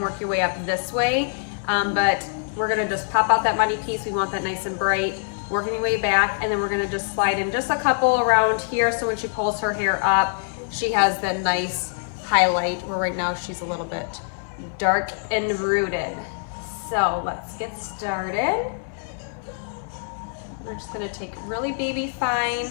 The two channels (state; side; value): silent; right; digital silence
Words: work your way up this way. But we're gonna just pop out that money piece. We want that nice and bright. Working your way back, and then we're gonna just slide in just a couple around here, so when she pulls her hair up, she has that nice highlight, where right now she's a little bit dark and rooted. So let's get started. We're just gonna take really baby fine